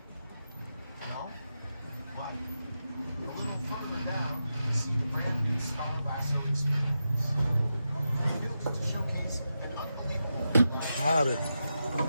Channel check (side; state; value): both; inverted; correlation -0.89